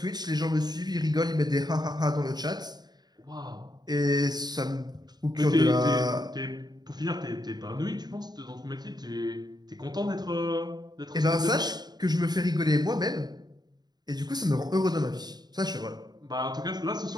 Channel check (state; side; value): late; left; 0.20 ms